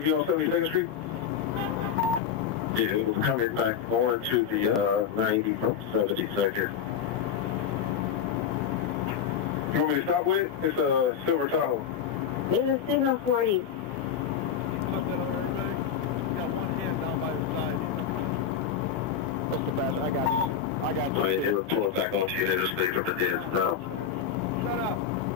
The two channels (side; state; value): right; quieter; 7.7 dB